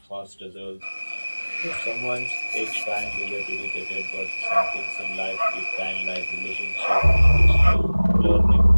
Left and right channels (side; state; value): both; inverted; correlation -1.00